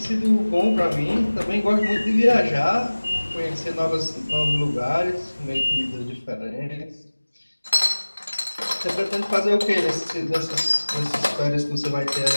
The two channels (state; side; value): inverted; both; correlation -1.00